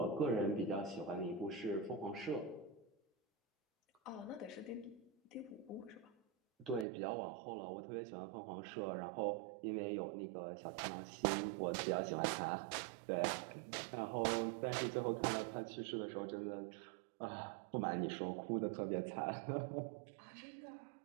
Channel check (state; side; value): drops out; left; at 6.9 s